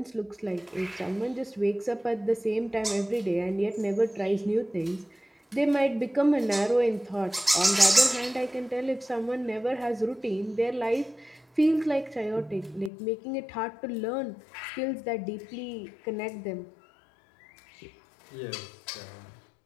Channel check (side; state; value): right; drops out; at 12.9 s